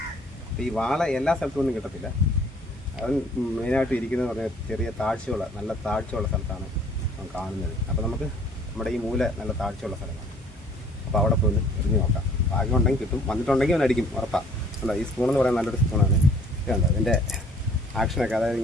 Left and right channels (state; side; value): normal; both; correlation 0.57